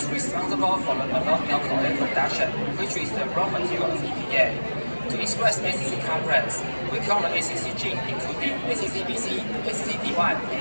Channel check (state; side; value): inverted; both; correlation -1.00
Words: responsible for the malonyl CoA production, which is the raw material of EPA. To express ACC complex, we count the ACC gene including ACC-BC, ACC-D1, and